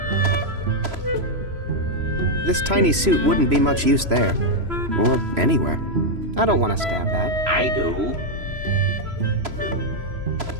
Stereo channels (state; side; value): late; left; 3.0 ms